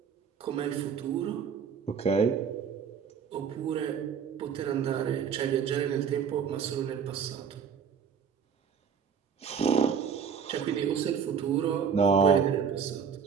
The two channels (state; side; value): quieter; left; 6.9 dB